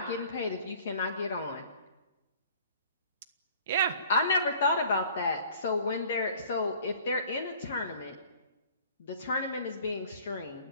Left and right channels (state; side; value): inverted; both; correlation -0.51